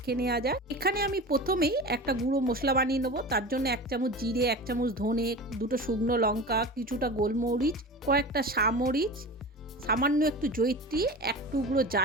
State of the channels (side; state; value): both; normal; correlation 0.32